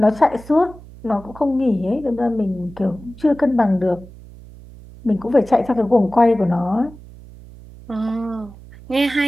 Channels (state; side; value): noise; right; hum, 19 dB below the sound